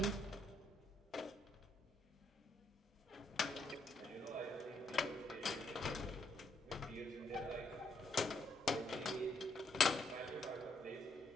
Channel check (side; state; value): both; normal; correlation 0.75